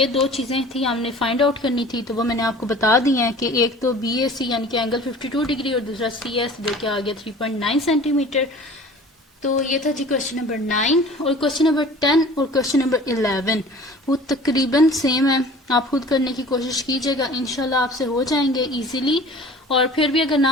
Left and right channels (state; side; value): normal; both; correlation 0.44